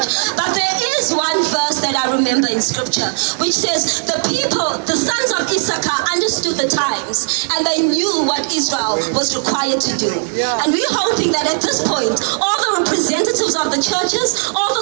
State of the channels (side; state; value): left; silent; digital silence